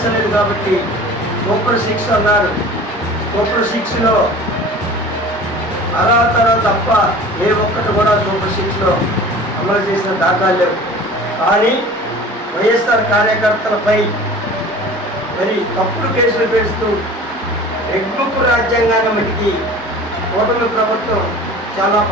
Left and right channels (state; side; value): normal; both; correlation 0.41